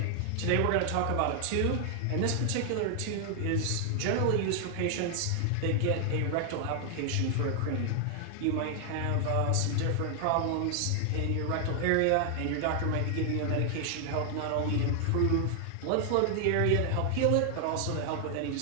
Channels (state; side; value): different; both; correlation 0.00